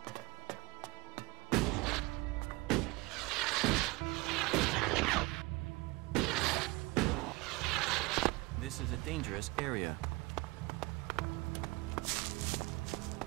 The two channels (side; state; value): left; quieter; 23.4 dB